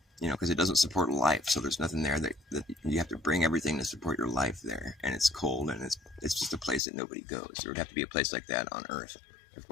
because it doesn't support life. So there's nothing there that you have to bring everything to support your life there. And it's cold and it's just a place that nobody goes. There would have to be a place like that on Earth if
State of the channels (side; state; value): right; drops out; at 6.8 s